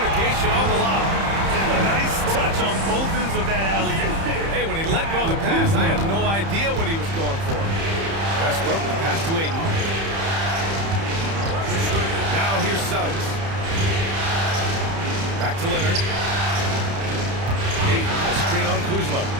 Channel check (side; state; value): left; late; 30 ms